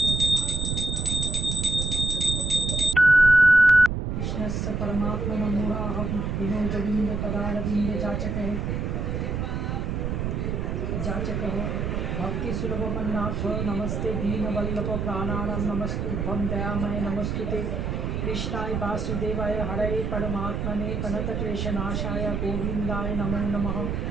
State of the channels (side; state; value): right; noise; rumble, 2 dB below the sound